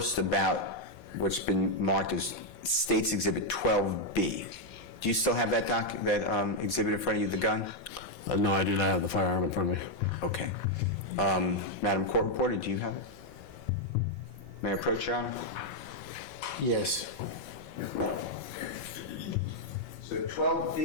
about what's been marked as State's Exhibit 12B. Do you still have that exhibit in front of you, the gun? No, I do not have the firearm in front of me. Okay. Madam Court Reporter, do you have it? May I approach, Your Honor? Yes. So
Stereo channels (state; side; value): late; right; 4.2 ms